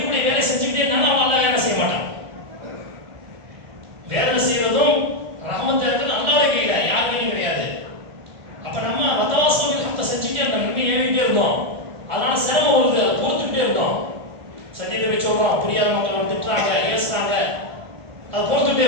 வேலை செஞ்சுக்கிட்டே இருந்தாலும் அவன் அல்லாஹ் வேலை செய்ய மாட்டான். வேலை செய்வதும் ரஹமத் இருக்கிறது அல்லாஹ்வுடைய கையில, யார் கையிலும் கிடையாது. அப்ப நம்ம வதவாசம் ஹத்த செஞ்சுக்கிட்டே இருந்தோம், நன்மை ஏறிக்கிட்டே இருந்தோம். அதனால சிரமம் வருது, அதை பொறுத்துக்கிட்டே இருந்தோம். சத்தியத்தை வச்சு சொல்றோம், புரியாத மக்களை திட்டுறாங்க, ஏசுறாங்க, அதை பொறுத்துக்கிட்டே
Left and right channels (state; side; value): late; left; 1.5 ms